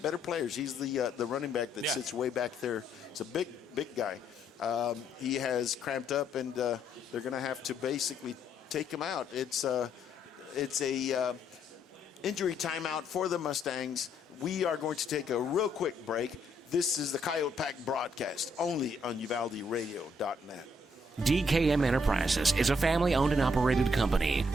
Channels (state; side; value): normal; both; correlation 0.72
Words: players. He's the running back that sits way back there. It's a big guy. He has cramped up, and they're going to have to basically take him out. It's a injury timeout for the Mustangs. We are going to take a real quick break. This is the Coyote Pack broadcast, only on UvaldeRadio.net. DKM Enterprises is a family-owned and operated company